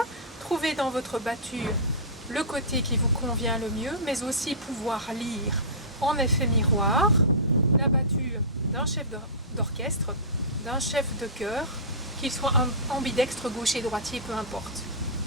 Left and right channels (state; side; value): normal; both; correlation -0.20